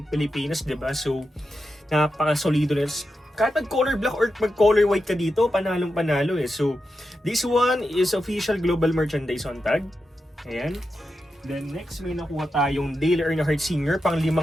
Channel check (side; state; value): both; normal; correlation 0.89